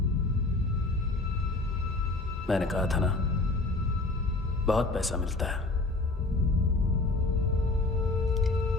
मैंने कहा था ना, बहुत पैसा मिलता है।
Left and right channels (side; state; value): right; quieter; 3.2 dB